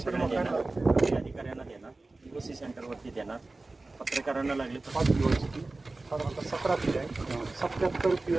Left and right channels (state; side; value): quieter; left; 3.3 dB